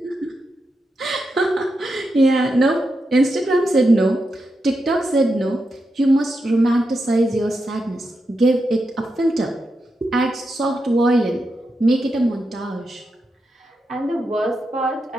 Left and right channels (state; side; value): normal; both; correlation 0.86